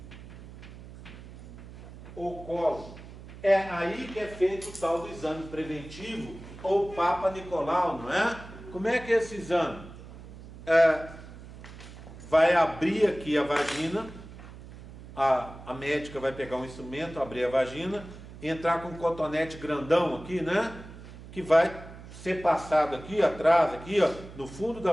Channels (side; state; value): right; noise; hum, 16 dB below the sound